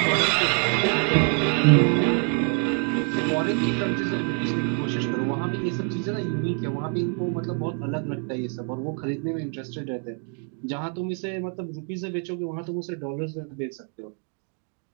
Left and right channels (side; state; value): left; quieter; 39.4 dB